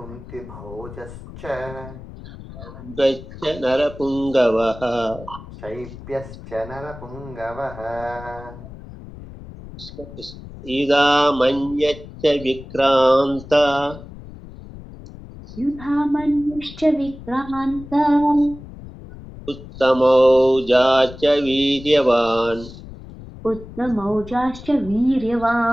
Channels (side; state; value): left; noise; rumble, 15 dB below the sound